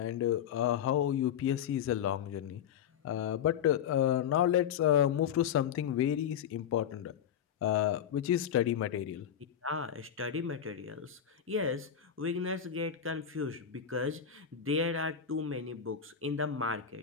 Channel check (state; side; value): quieter; right; 8.7 dB